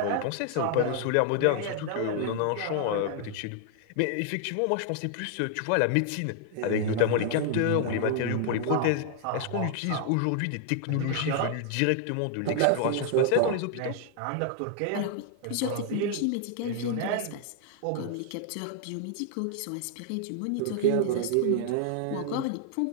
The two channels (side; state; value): both; different; correlation 0.00